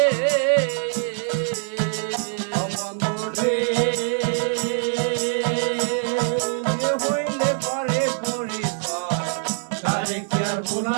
বন্ধুরে হইলে পরে পরিচয় তারে কি আর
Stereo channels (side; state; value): left; silent; 63 dB below the other